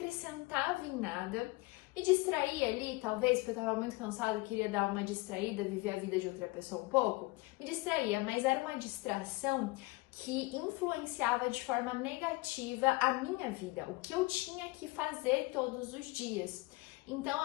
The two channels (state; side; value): quieter; right; 22.8 dB